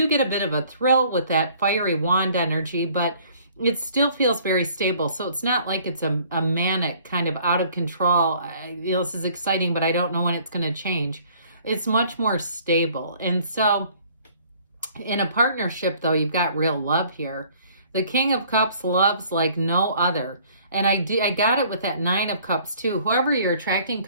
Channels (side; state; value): both; inverted; correlation -0.56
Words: get a bit of a thrill with that fiery wand energy, but it still feels very stable. So it's not like it's a manic kind of out of control. This is exciting, but I don't know when it's going to change. It's much more stable. And so in a partnership, though, you've got real love here. The King of Cups loves like no other. And I got it with that Nine of Cups too. Whoever you're attracting